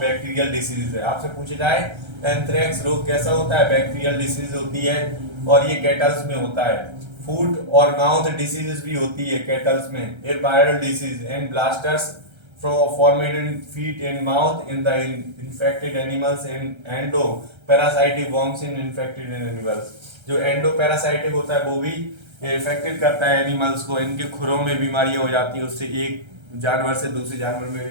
डिसीज है। आपसे पूछे जाए एंथ्रेक्स रोग कैसा होता है, बैक्टीरियल डिसीज होती है और ये कैटल्स में होता है। फूट और माउथ डिसीज भी होती है कैटल्स में। Air viral disease and blasters formed in feet and mouth in the infected animals and endoparasitic worms in infected animals। जो एंडोपैरासाइटिक होता है वो भी इफेक्टेड करता है एनिमल्स को, इनके खुरों में बीमारियां हो जाती है, उससे एक जानवर से दूसरे जानवर में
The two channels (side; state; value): left; late; 1.3 ms